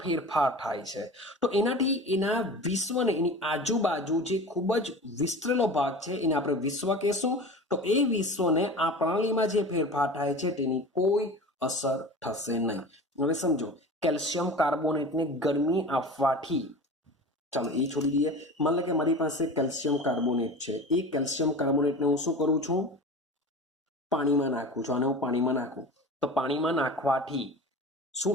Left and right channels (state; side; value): normal; both; correlation 0.35